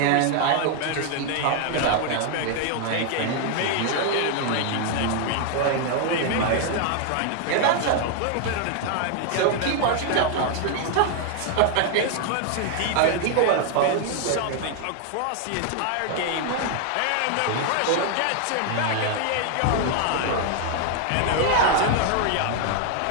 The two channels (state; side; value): different; both; correlation 0.00